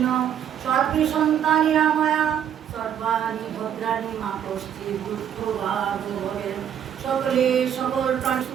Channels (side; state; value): left; quieter; 9.3 dB